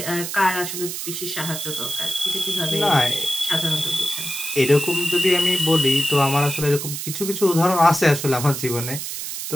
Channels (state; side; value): noise; right; hiss, 6 dB below the sound